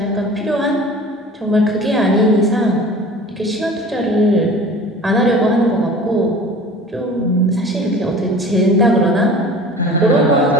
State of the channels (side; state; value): both; normal; correlation 0.42